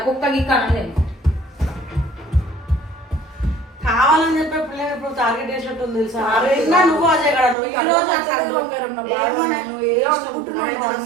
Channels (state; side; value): drops out; left; at 7.6 s